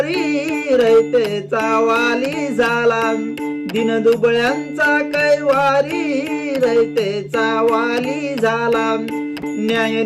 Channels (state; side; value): identical; both; correlation 1.00